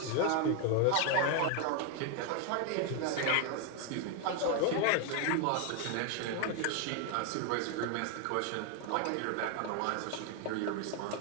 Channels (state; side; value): different; both; correlation 0.01